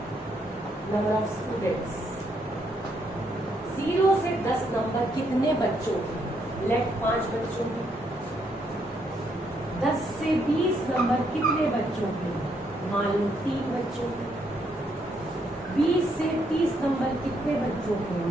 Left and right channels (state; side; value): normal; both; correlation 0.74